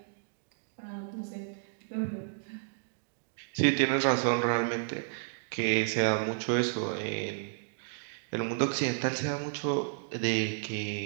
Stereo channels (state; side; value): silent; left; digital silence